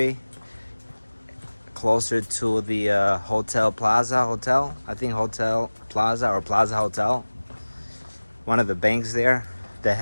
closer to the Hotel Plaza Hotel. I think Hotel Plaza or Plaza Hotel. One of the banks there that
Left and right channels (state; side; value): inverted; both; correlation -1.00